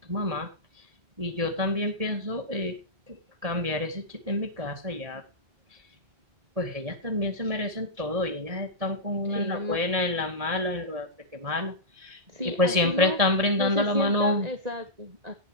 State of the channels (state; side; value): late; left; 1.7 ms